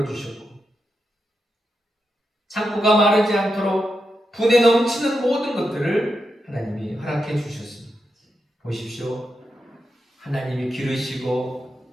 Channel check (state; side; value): normal; both; correlation 0.86